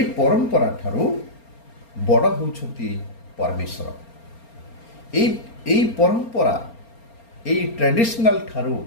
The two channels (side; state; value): right; late; 4.3 ms